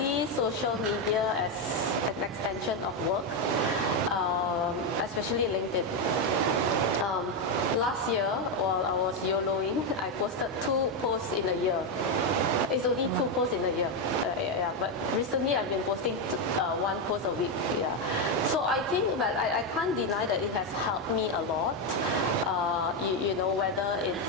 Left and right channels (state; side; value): normal; both; correlation 0.06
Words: social media as an extension of work, especially LinkedIn. Last year, while I was YOLOing, I posted 2 posts in a year. It's only 2 posts in a year. But recently I've been posting 1 post a week. Yeah. So I think that I can't deny that it has helped me a lot.